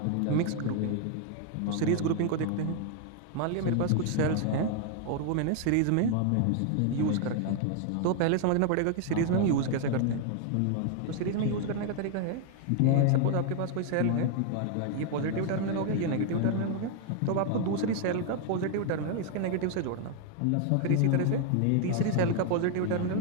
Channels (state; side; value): different; both; correlation 0.00